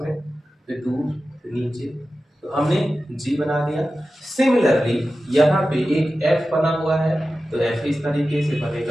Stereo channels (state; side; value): normal; both; correlation 0.94